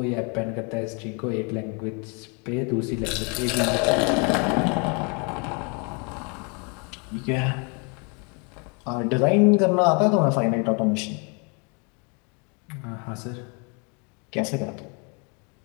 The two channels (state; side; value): quieter; right; 34.1 dB